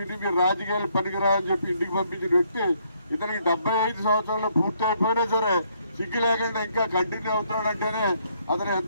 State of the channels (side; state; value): both; inverted; correlation -0.70